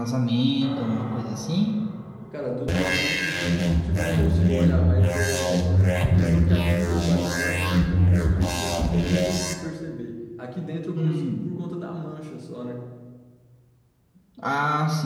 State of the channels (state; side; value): identical; both; correlation 1.00